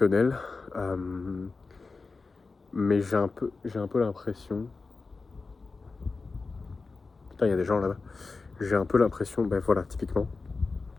Mais j'ai un peu l'impression... Putain, il y a des gens là-bas. J'ai un peu l'impression, ben voilà, typiquement.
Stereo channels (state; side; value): quieter; right; 4.1 dB